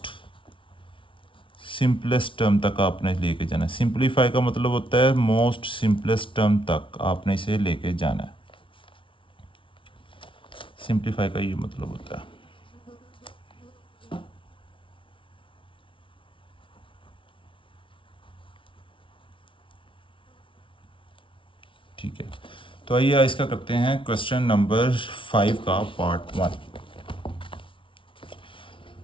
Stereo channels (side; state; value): right; late; 0.25 ms